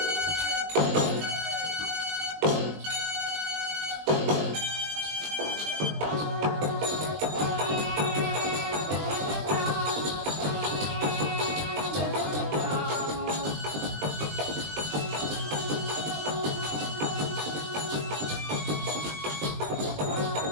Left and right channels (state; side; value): late; left; 20 ms